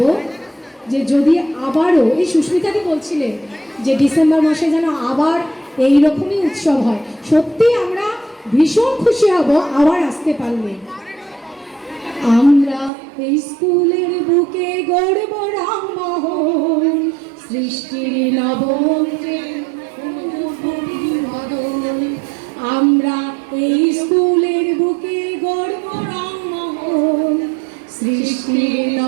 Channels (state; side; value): drops out; left; at 12.9 s